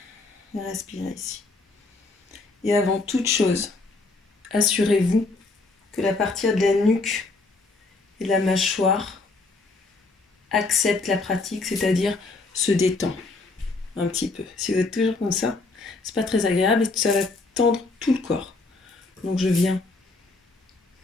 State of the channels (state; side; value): quieter; right; 3.5 dB